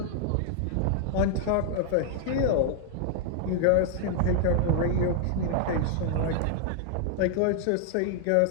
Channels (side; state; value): both; different; correlation 0.00